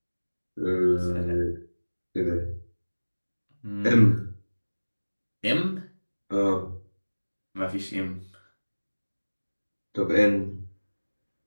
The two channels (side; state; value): both; inverted; correlation -1.00